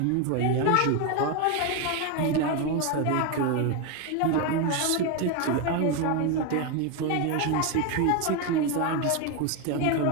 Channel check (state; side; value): different; both; correlation 0.02